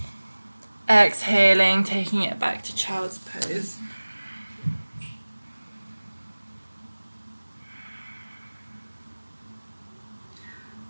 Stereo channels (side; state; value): both; inverted; correlation -1.00